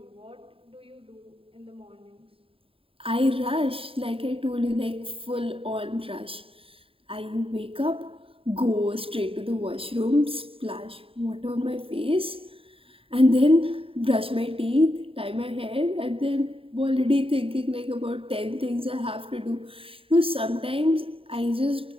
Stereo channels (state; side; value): late; left; 0.27 ms